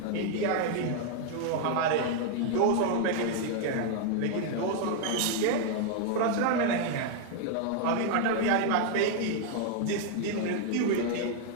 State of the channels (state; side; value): different; both; correlation 0.00